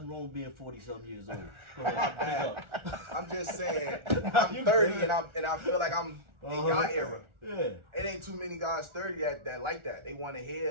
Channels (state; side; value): late; left; 1.4 ms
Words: wrong with being 40-something years old. Go ahead, pick up. I'm just saying, I'm 30 and I feel like I'm in y'all era. Yeah. It ain't too many guys 30 that like that. They want to